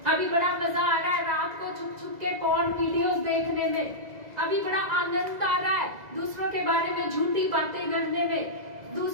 अभी बड़ा मजा आ रहा है रात को छुप छुप के पॉर्न वीडियोस देखने में, अभी बड़ा आनंद आ रहा है दूसरों के बारे में झूठी बातें करने में,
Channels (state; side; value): late; left; 2.0 ms